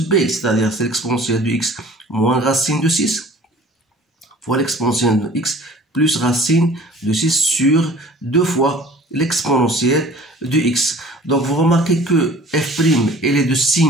b, c'est-à-dire c'est l'exponentielle de x moins racine de 6 fois l'exponentielle de x plus racine de 6 sur 2 fois l'exponentielle de x. Donc, vous remarquez que f' elle est de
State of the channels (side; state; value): both; normal; correlation 0.47